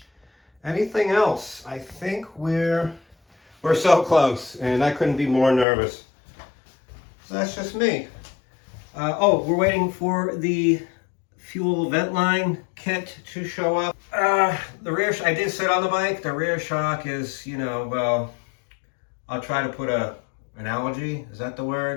Anything else? I think we're so close, and I couldn't be more nervous. So that's just me. Oh, we're waiting for the fuel vent line kit to show up. The rear, I did sit on the bike. The rear shock is, you know, well, I'll try to put an analogy. Is that the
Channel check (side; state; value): right; drops out; at 5.7 s